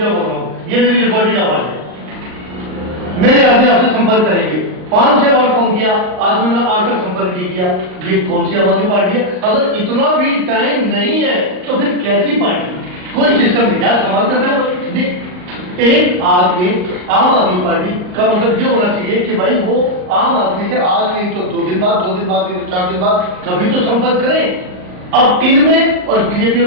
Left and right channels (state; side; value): late; left; 39 ms